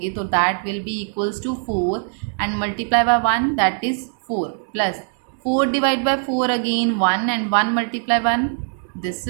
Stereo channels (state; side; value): silent; left; digital silence